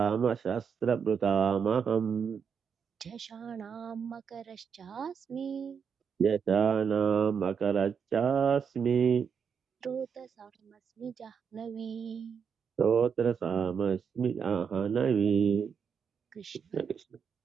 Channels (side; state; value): left; quieter; 6.7 dB